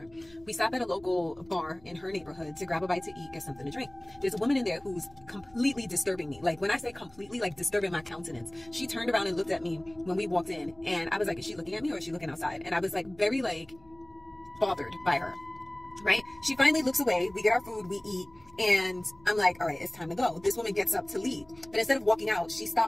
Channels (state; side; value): noise; left; hum, 28 dB below the sound